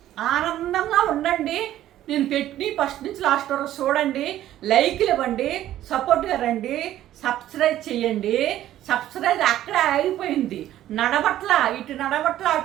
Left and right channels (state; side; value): quieter; left; 13.0 dB